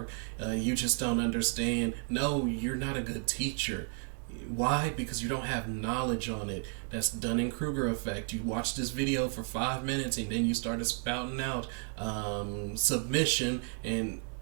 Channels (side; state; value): left; quieter; 38.9 dB